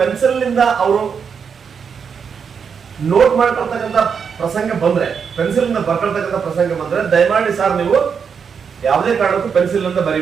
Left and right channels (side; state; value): left; quieter; 6.5 dB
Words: ನಿಂದ ಅವರು ನೋಟ್ ಮಾಡ್ಕೊಳ್ತಕ್ಕಂಥ ಪ್ರಸಂಗ ಬಂದ್ರೆ, ಪೆನ್ಸಿಲ್ ನಿಂದ ಬರ್ಕೊಳ್ತಕ್ಕಂಥ ಪ್ರಸಂಗ ಬಂದ್ರೆ ದಯಮಾಡಿ ಸರ್ ನೀವು ಯಾವುದೇ ಕಾರಣಕ್ಕೂ ಪೆನ್ಸಿಲ್ ನಿಂದ